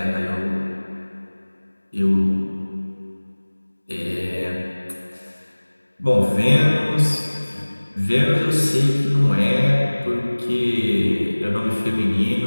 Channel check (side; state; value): both; inverted; correlation -1.00